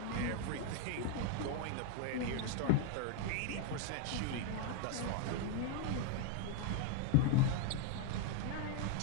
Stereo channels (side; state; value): both; different; correlation 0.00